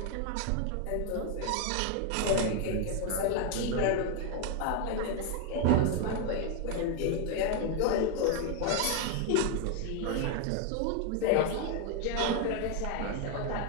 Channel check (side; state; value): both; different; correlation 0.01